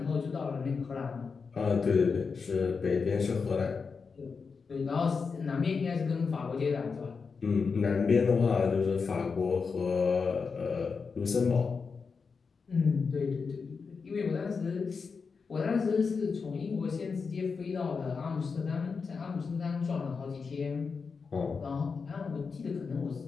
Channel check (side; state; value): right; quieter; 5.2 dB